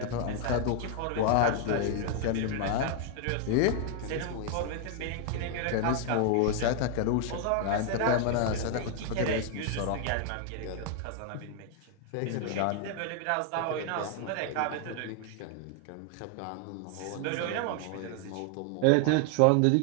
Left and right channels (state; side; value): different; both; correlation 0.00